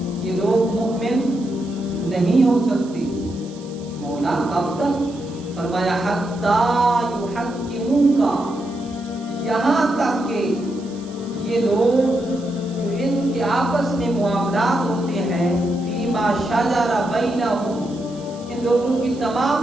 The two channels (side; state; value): right; noise; hiss, 23 dB below the sound